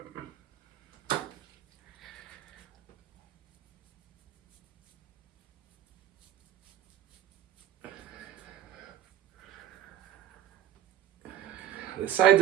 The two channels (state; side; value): quieter; left; 11.2 dB